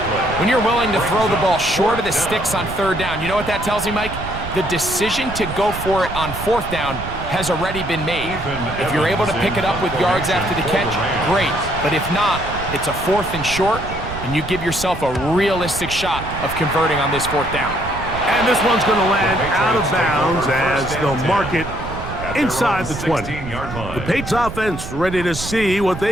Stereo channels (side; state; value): right; noise; rumble, 9 dB below the sound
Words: When you're willing to throw the ball short of the sticks on 3rd down, you know what that tells me, Mike? The decision to go for it on 4th down has already been made. If you're able to pick it up with yards after the catch, great. But if not, it's a 4th and short, and you give yourself a realistic shot of converting on this 4th down. And this one's going to land out of bounds as they'll mark it inside the 20. The Patriots offense ready to see what